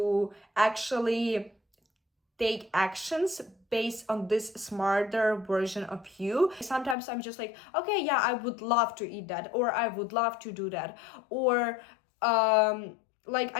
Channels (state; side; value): drops out; right; at 7.0 s